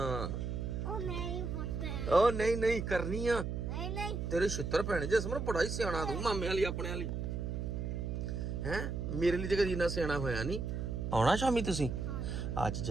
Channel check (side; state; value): right; noise; hum, 3 dB below the sound